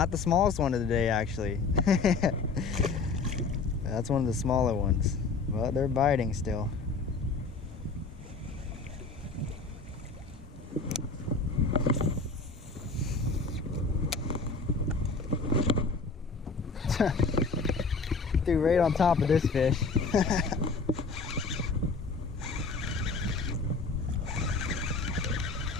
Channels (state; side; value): quieter; right; 4.3 dB